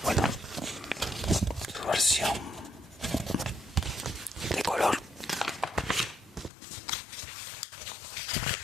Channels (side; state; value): right; drops out; at 6.5 s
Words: bueno, su versión de color.